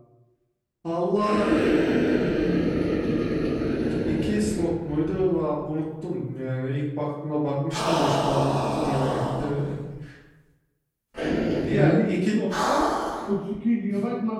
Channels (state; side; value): identical; both; correlation 1.00